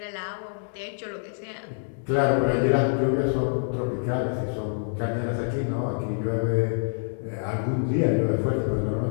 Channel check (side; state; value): right; silent; digital silence